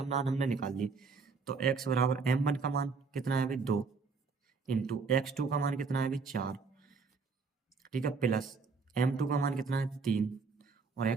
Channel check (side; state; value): left; quieter; 4.9 dB